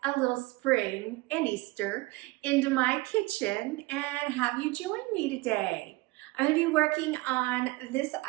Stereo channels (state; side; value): quieter; left; 21.8 dB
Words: a little spring and Easter into my kitchen and have you join me today. I'm going to be working on this